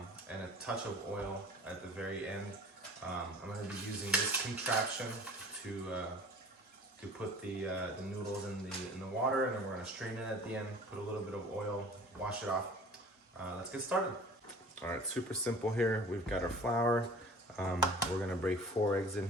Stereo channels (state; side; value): normal; both; correlation 0.45